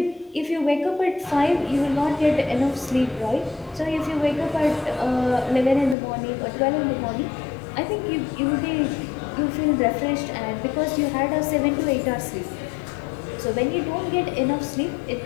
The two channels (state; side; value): drops out; right; at 6.0 s